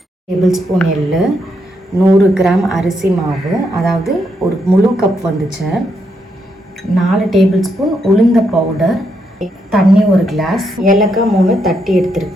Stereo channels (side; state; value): both; normal; correlation 0.79